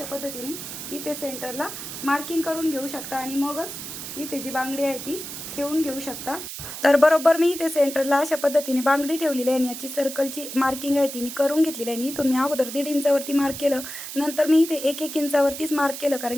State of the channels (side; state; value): right; noise; hiss, 9 dB below the sound